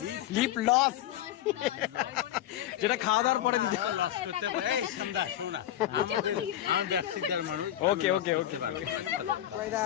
lip gloss, যেটা খাওয়া দাওয়ার পরে দিতে। আমি ব্যবসাদার মানুষ। ওকে ওকে ওকে।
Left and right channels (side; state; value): right; quieter; 12.3 dB